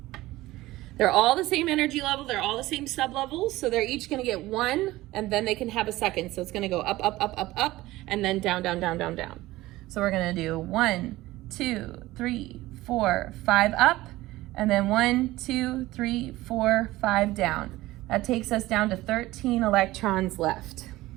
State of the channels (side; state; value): left; quieter; 17.7 dB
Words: They're all the same energy level. They're all the same sublevels. So they're each going to get 1, and then they can have a second. So it's going to go up, up, up, up, up, and then down, down, down, down, down. So we're going to do 1, 2, 3, 4, 5 up, and then 1, 2, 3, 4, 5 down. That takes us down to 13 electrons left.